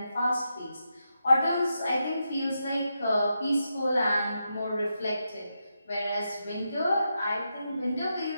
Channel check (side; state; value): both; inverted; correlation -0.86